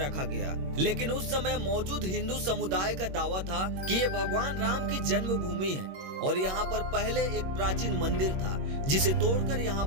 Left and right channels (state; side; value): late; left; 21 ms